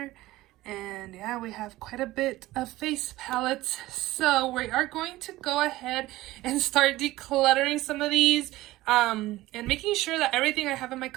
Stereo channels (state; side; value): quieter; left; 17.4 dB